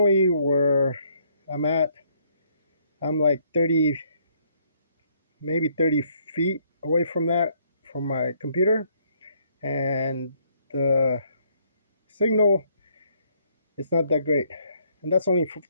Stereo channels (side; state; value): both; inverted; correlation -0.68